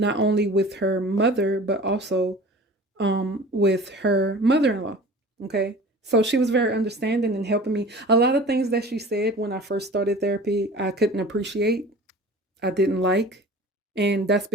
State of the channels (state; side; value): normal; both; correlation 0.41